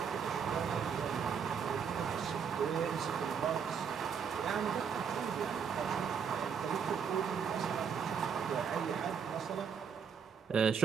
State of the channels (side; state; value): left; quieter; 6.8 dB